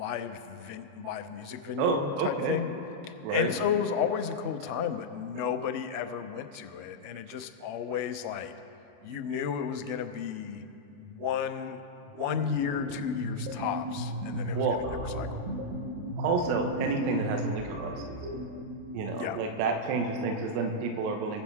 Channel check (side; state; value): left; late; 28 ms